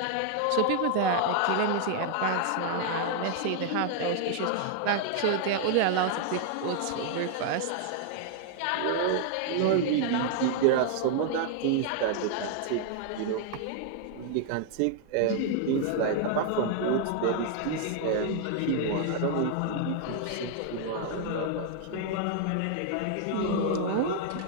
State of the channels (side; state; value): both; different; correlation 0.00